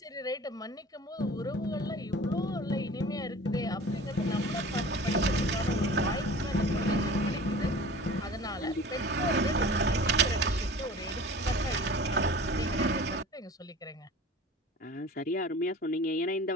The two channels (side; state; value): both; normal; correlation 0.41